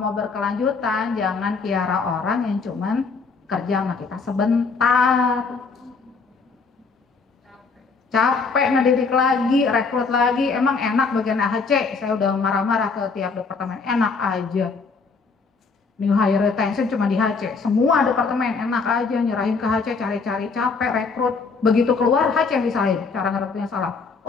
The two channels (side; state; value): right; quieter; 4.7 dB